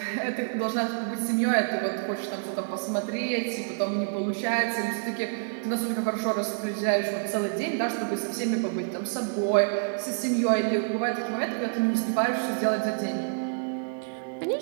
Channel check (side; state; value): left; silent; 60 dB below the other